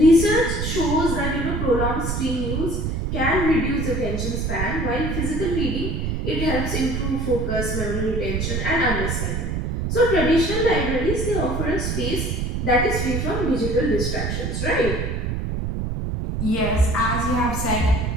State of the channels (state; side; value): noise; right; rumble, 1 dB below the sound